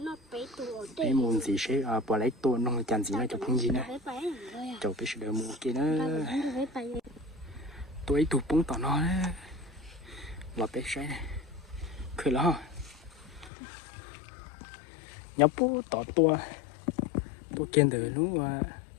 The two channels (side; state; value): right; drops out; at 13.5 s